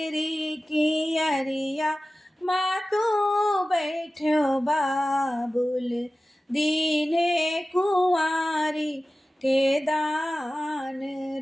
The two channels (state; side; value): normal; both; correlation 0.96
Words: कियरिया माँ तू बैठो बाबुल, दीने कुंवारी के दान